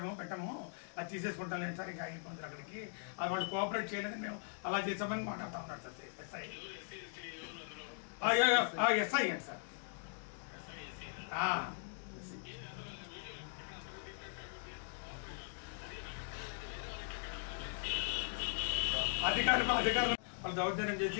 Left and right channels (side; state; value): right; silent; digital silence